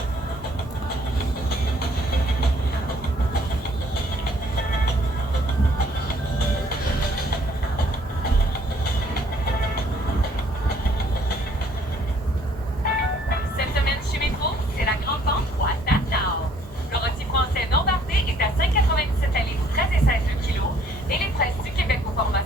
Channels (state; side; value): normal; both; correlation 0.62